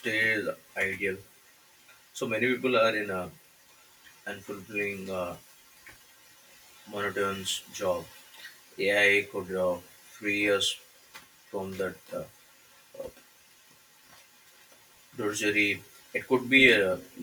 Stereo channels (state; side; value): identical; both; correlation 1.00